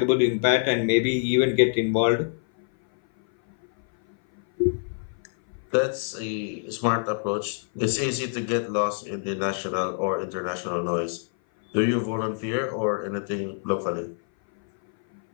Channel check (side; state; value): right; silent; 57 dB below the other